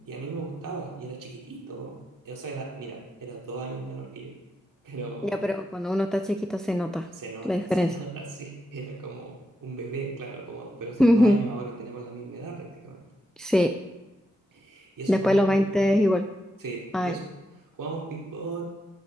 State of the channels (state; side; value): normal; both; correlation 0.84